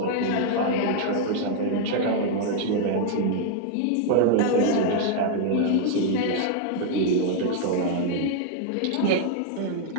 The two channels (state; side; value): different; both; correlation 0.00